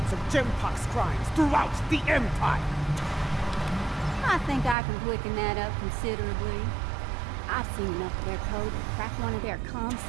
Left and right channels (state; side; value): drops out; left; at 4.8 s